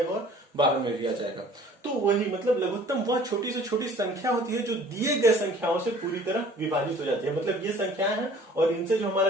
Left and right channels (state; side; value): normal; both; correlation 0.51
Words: और 12 में भी आ जाएगा। तो वही मतलब लघुत्तम वह छोटी से छोटी संख्या होती है जो दिए गए संख्याओं से पूरी तरह विभाजित हो जाती है, मतलब ये संख्याएं हैं और इनसे जो हमारा